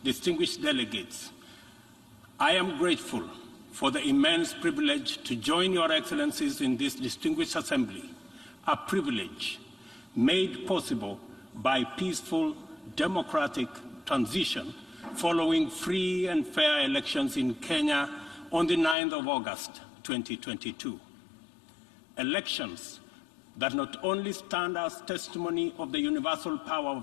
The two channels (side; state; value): right; drops out; at 18.9 s